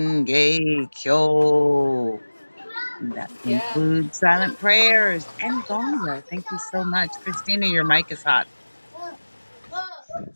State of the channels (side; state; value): both; inverted; correlation -1.00